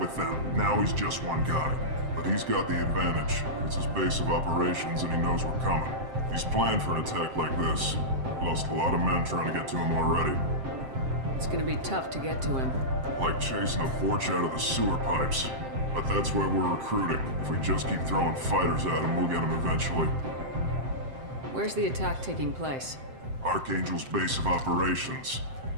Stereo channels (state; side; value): late; left; 7.6 ms